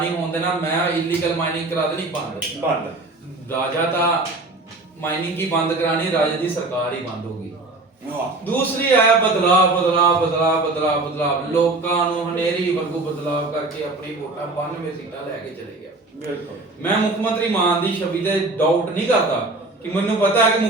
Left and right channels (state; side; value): quieter; left; 3.1 dB